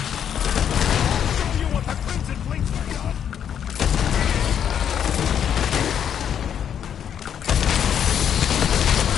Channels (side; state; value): right; quieter; 8.8 dB